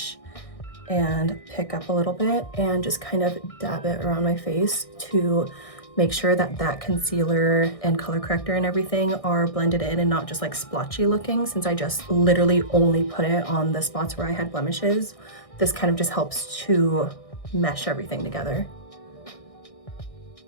and pick up a little bit and just kind of dab it around my face to make sure that that concealer and color corrector and everything are blended in and not just like splotchy looking, since I just literally only put it on the spots where I had blemishes. This kind of just helps to mesh everything together.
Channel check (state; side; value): late; right; 1.6 ms